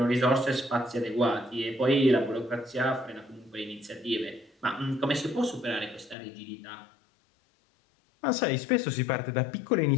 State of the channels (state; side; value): drops out; right; at 6.2 s